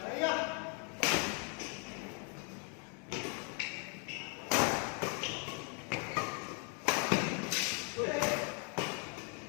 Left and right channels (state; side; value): quieter; right; 37.8 dB